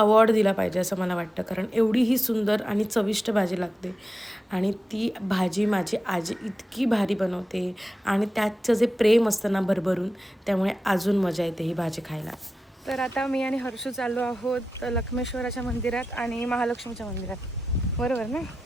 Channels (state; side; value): normal; both; correlation 0.92